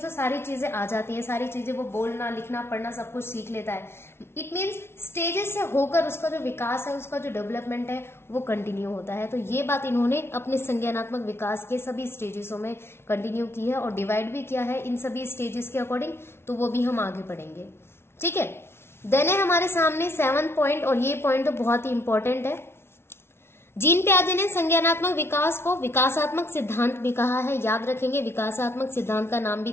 सारी चीजें आ जाती हैं, सारी चीजें वो बोलना लिखना पढ़ना सब कुछ सीख लेता है। इट मीन्स स्टेजेस से होकर उसका जो विकास है, उसका जो डेवलपमेंट है वो कंटिन्यू होता है। तो ये बात इन्होंने अपने संज्ञानात्मक विकास के सभी स्टेजेसों में कंटिन्यू की है और डिवाइड भी किया है इन सभी स्टेजेस के अकॉर्डिंग, तो वो भी हम आगे पढ़ेंगे। ठीक है, देन है हमारे सामने 7 पॉइंट, और ये पॉइंट तो बहुत ही इंपॉर्टेंट है। जीन पियाजे ने संज्ञानात्मक विकास को विकासात्मक सिद्धांत भी कहा है। याद रखेंगे, विकासात्मक सिद्धांत का नाम भी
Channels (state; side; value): late; right; 0.12 ms